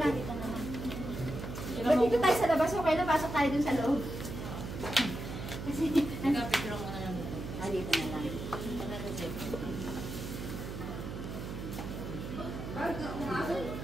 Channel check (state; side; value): noise; right; hum, 7 dB below the sound